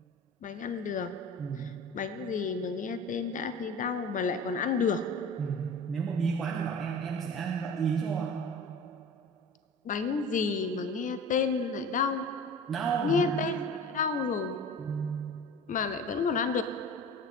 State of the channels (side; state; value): both; normal; correlation 0.38